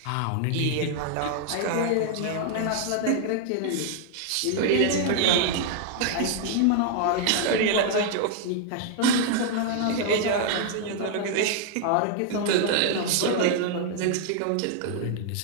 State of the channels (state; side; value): different; both; correlation 0.00